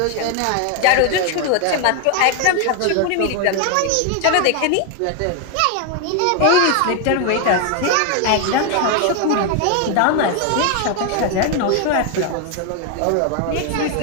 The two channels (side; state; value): both; different; correlation 0.01